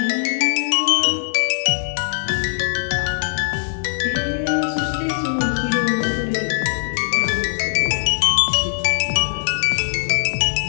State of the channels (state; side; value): silent; right; 65 dB below the other